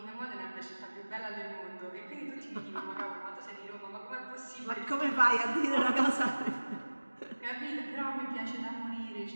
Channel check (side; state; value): both; inverted; correlation -1.00